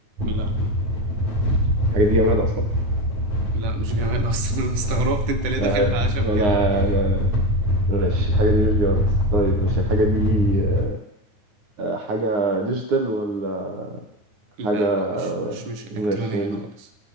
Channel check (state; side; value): late; left; 10 ms